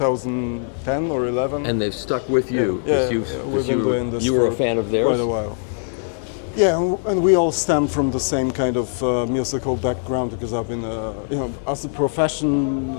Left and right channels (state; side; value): silent; right; digital silence